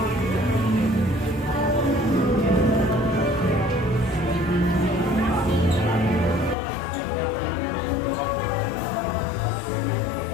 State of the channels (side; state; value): right; drops out; at 6.6 s